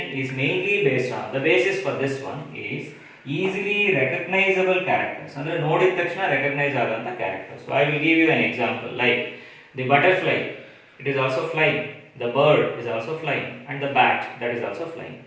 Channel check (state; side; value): identical; both; correlation 1.00